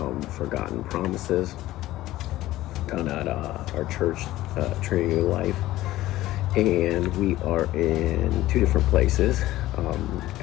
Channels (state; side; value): quieter; right; 15.9 dB